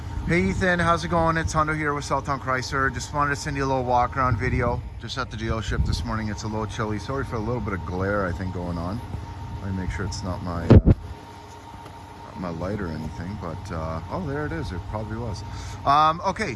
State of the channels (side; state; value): both; identical; correlation 1.00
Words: Hey Ethan, how's it going? It's Hundo here with Southtown Chrysler. Just wanted to send you a little walk around video. Just at the dealership this morning. It's a little chilly. Sorry for a little bit of glare I think going on. Let me make sure it's not my light or anything, but oh, there it is. It probably was. Okay,